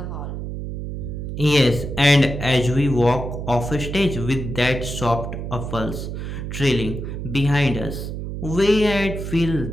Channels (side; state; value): right; noise; hum, 6 dB below the sound